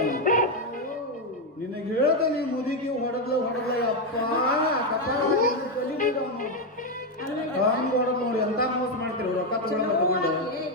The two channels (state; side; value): normal; both; correlation 0.05